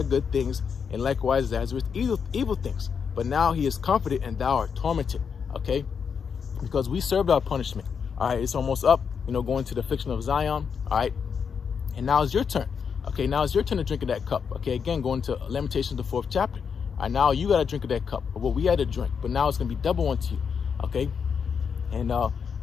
good things, and likewise Lazarus evil things. But now he is comforted, and thou art tormented. Okay, because we served our punishment. All right, it's almost up, you know, going to the affliction of Zion. All right, and now it's your turn. Okay, now it's your turn to drink of that cup. Okay, again, going to Lamentations, the 4th chapter. All right, now you got to drink of that cup of what we had to drink, but now it's going to be double unto you. Okay, and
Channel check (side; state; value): right; quieter; 6.5 dB